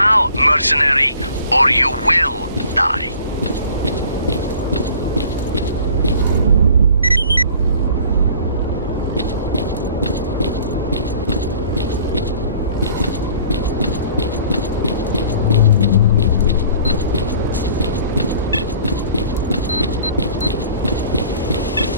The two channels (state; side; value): inverted; both; correlation -0.50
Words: mercenary, or you will die.